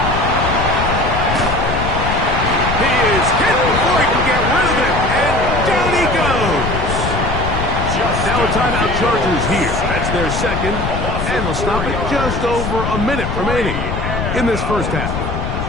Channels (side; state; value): left; noise; rumble, 3 dB below the sound